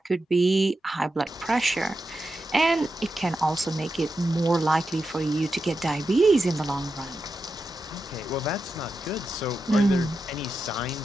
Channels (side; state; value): both; normal; correlation 0.89